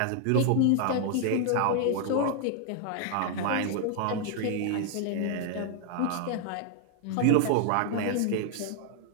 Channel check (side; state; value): both; different; correlation 0.00